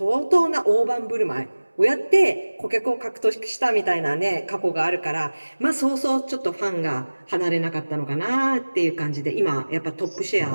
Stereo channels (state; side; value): inverted; both; correlation -1.00